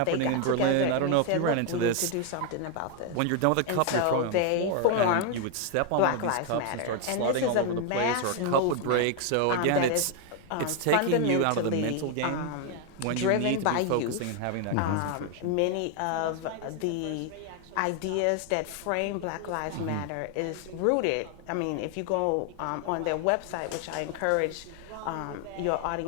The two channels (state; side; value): different; both; correlation 0.00